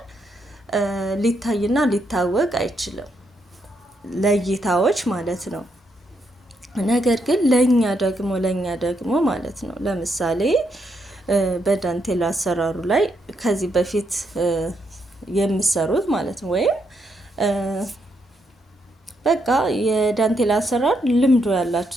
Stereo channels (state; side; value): normal; both; correlation 0.78